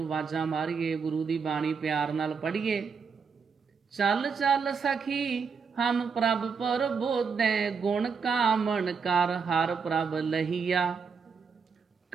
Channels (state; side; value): quieter; left; 5.7 dB